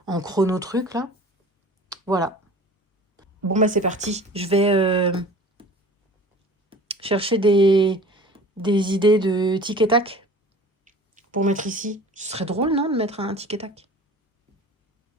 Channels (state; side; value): normal; both; correlation 0.42